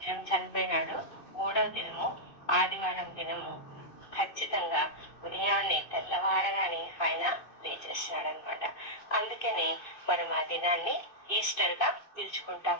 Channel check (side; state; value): right; late; 2.6 ms